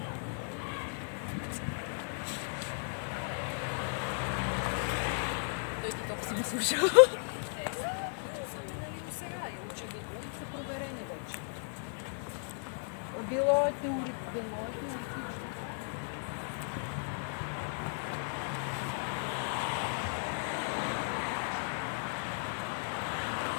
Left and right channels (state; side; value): silent; right; 54 dB below the other